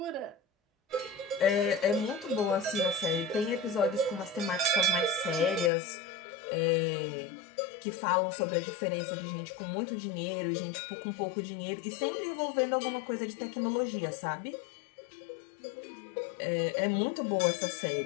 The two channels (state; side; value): drops out; right; at 5.7 s